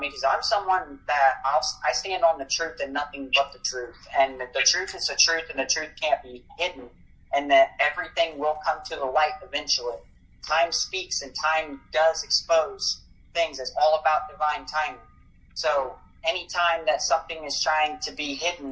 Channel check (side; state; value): both; identical; correlation 1.00